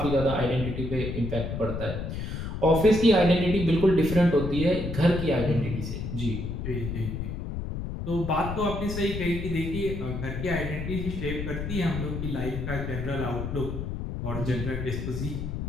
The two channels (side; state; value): left; noise; rumble, 5 dB below the sound